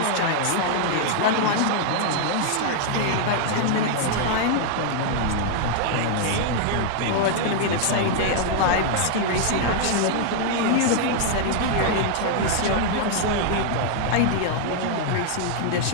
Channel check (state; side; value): different; both; correlation 0.00